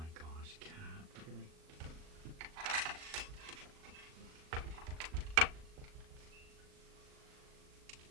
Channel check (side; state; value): left; late; 38 ms